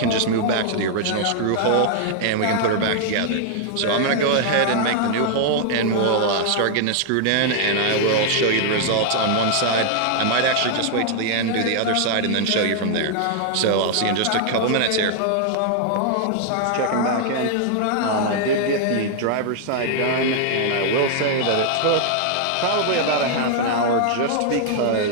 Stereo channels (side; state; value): both; different; correlation -0.01